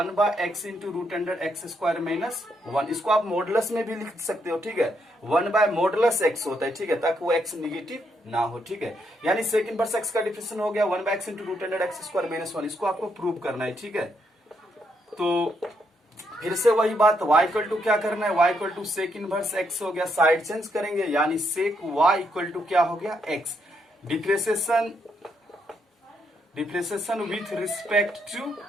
into root under x square minus 1। इसको आप मॉडुलस में भी लिख सकते हो, ठीक है, 1/मॉडुलस x होता है, ठीक है, ताकि वो x निगेटिव ना हो, ठीक है। यानी सेक इनवर्स एक्स का डिफरेंशिएशन हो गया 1/x into root under x square minus 1। इसको आपको प्रूव करना है, ठीक है। तो फिर से वही बात, y इक्वल टू क्या करना है, y equal to sec inverse x हो गया, साइड चेंज करेंगे, यानी सेक y इक्वल टू क्या हो गया, x। Differentiation with respect to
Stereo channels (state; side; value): normal; both; correlation 0.77